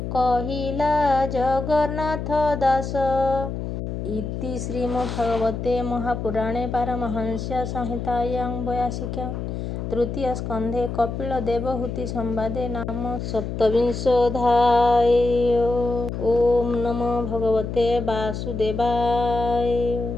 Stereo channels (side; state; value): left; noise; hum, 5 dB below the sound